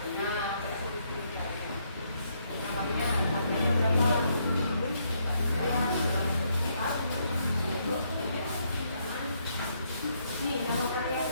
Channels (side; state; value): both; inverted; correlation -0.74